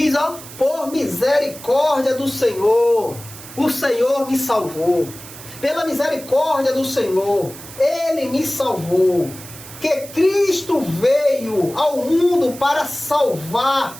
por misericórdia do Senhor, o Senhor me salvou. Pela misericórdia do Senhor, Ele me salvou. Que Cristo veio ao mundo para salvar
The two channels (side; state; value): right; noise; hiss, 16 dB below the sound